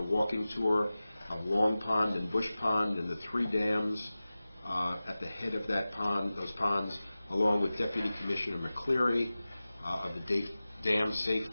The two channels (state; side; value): inverted; both; correlation -0.96